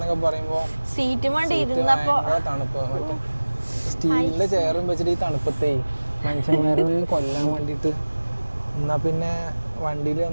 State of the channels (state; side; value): inverted; both; correlation -1.00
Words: പറയുമ്പോൾ ഭയങ്കര തണുപ്പ്. മറ്റേ സ്റ്റീലിൻ്റെ ചെയറും വെച്ചിട്ട് ഈ തണുപ്പത്തേ മനുഷ്യന്മാരെ കൊല്ലാൻ വേണ്ടിയിട്ട്. എന്നാൽ പിന്നെ വണ്ടിയിൽ